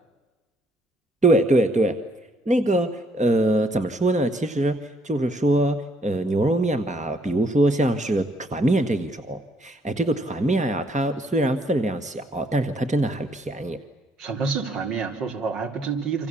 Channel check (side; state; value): both; normal; correlation 0.68